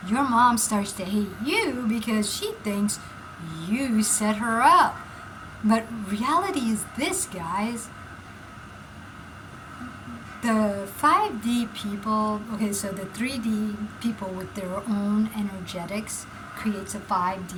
Your mom starts to hate you because she thinks you set her up. But reality is this, guys. The 5D people, okay, so the 3D people with their own energetics, creates a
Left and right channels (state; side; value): identical; both; correlation 1.00